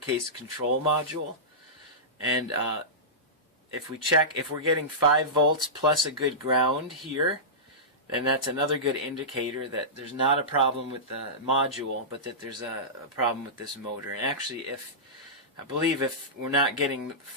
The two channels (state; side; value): normal; both; correlation -0.16